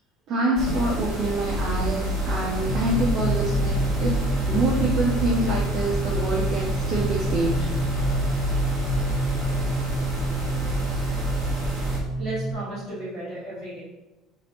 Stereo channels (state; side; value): normal; both; correlation 0.50